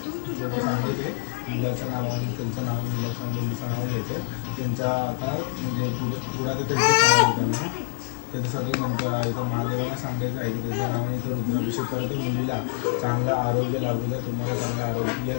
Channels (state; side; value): silent; right; digital silence